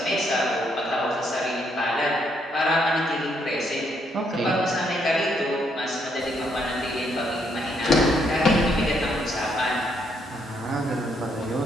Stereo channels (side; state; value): both; normal; correlation 0.73